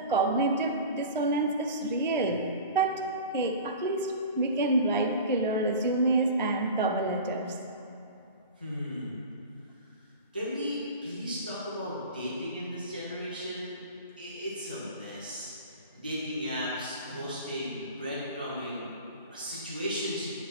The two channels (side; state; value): both; inverted; correlation -0.36